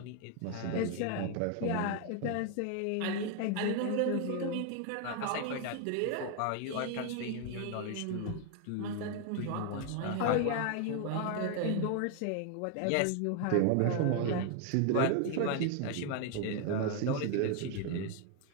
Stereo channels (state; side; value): different; both; correlation 0.00